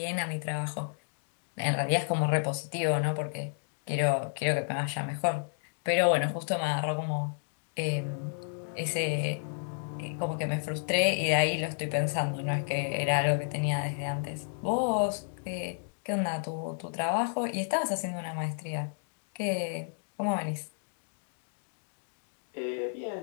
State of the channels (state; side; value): silent; right; digital silence